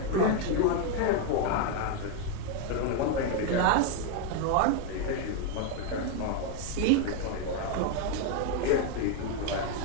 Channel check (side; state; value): both; different; correlation 0.01